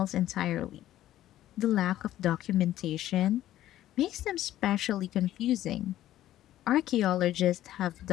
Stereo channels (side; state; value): right; quieter; 13.4 dB